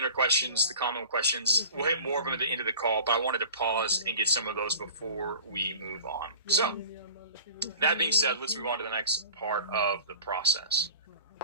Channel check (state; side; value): inverted; both; correlation -0.40